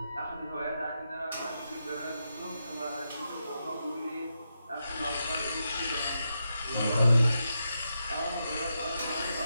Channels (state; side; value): inverted; both; correlation -0.86